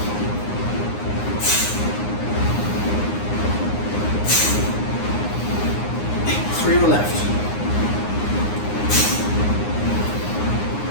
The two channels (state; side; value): late; right; 9.7 ms